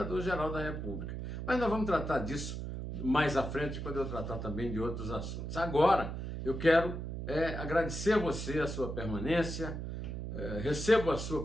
da República. Mas nós vamos tratar disso mais à frente, quando eu tratar também de outros assuntos. Agora, eu quero agradecer a você a sua permanência. Recebo a sua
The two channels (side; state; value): right; noise; hum, 5 dB below the sound